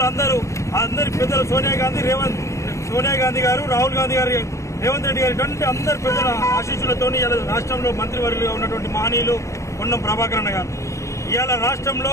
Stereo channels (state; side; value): late; right; 0.15 ms